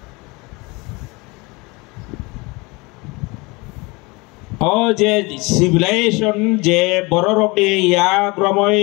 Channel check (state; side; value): quieter; right; 25.5 dB